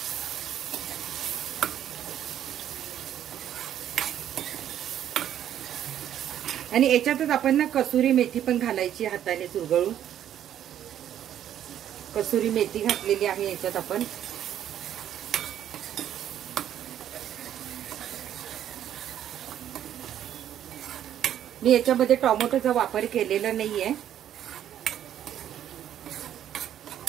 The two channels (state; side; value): quieter; left; 10.6 dB